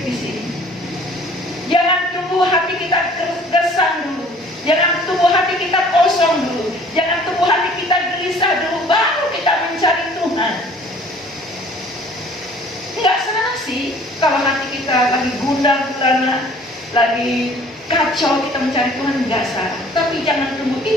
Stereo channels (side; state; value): both; normal; correlation 0.53